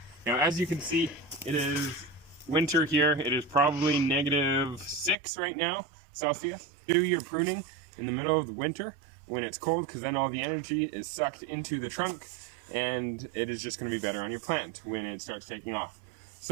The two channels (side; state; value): left; drops out; at 5.2 s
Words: Now, as you can see, it is winter here. It is probably -6 right now, Celsius. Do your pruning in the middle of the winter when it's cold, because then all the energy is sucked into the trunk, and it is just going to be better on your plant when it starts taking off.